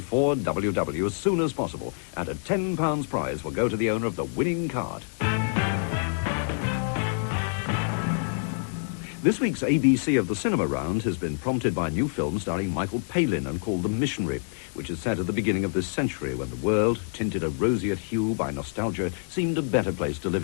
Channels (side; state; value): right; silent; digital silence